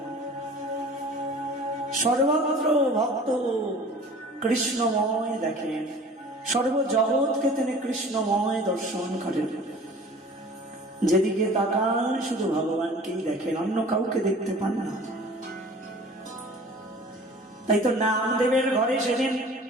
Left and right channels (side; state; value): both; normal; correlation 0.44